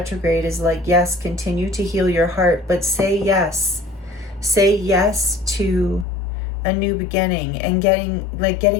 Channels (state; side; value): drops out; right; at 6.1 s